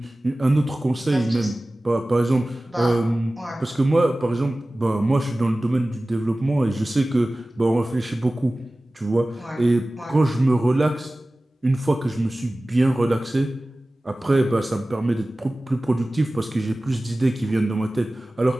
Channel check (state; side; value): normal; both; correlation 0.97